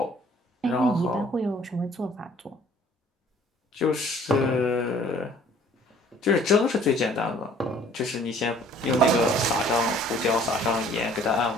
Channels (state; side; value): normal; both; correlation 0.55